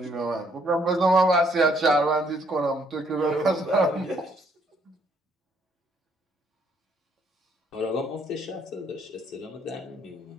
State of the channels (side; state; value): both; normal; correlation 0.68